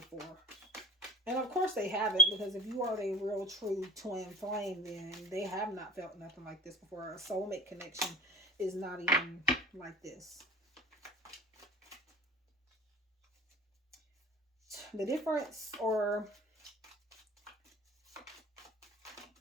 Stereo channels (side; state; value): both; normal; correlation 0.40